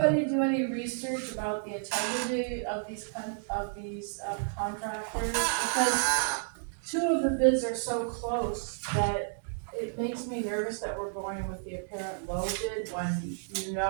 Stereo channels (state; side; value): silent; left; digital silence